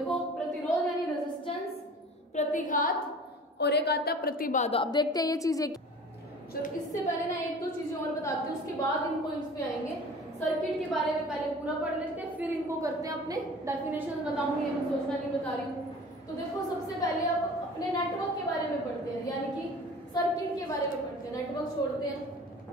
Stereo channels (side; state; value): both; normal; correlation 0.43